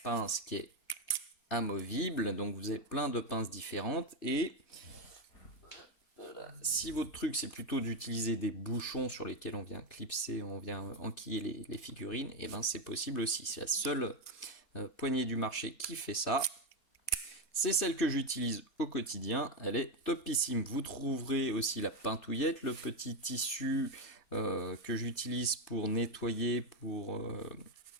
pince qui est amovible. Donc vous avez plein de pinces différentes et si votre truc c'est plutôt d'utiliser des bouchons sur lesquels on vient clipser, on vient enquiller les figurines, et ben c'est possible aussi. C'est la seule poignée du marché qui fait ça. C'est celle que j'utilise au quotidien, elle est topissime. Vous trouverez aussi la pintouillette, le petit tissu que j'utilise pour nettoyer, pour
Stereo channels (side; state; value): right; late; 3.3 ms